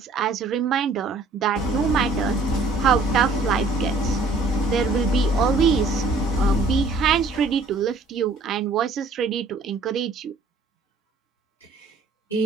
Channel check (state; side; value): quieter; left; 3.4 dB